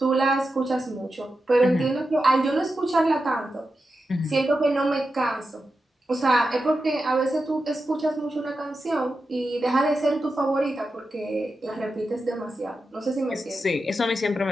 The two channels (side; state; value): both; normal; correlation 0.90